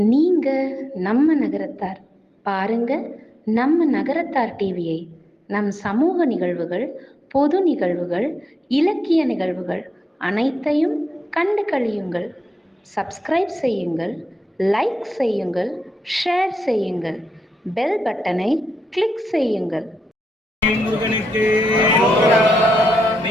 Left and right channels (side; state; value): both; normal; correlation 0.87